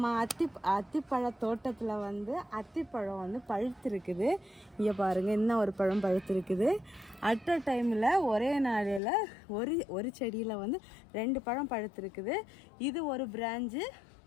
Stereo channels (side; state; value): right; drops out; at 9.0 s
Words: அத்திப்பழ தோட்டத்தில் வந்து அத்திப்பழம் வந்து பழுத்திருக்குது. இங்கே பாருங்கள், இன்னும் ஒரு பழம் பழுத்திருக்குது. அட் அ டைமில் ஒரே நாளில் ஒரு செடியில் வந்து 2 பழம் பழுத்திருக்குது. இது ஒரு பிரான்ச்சு,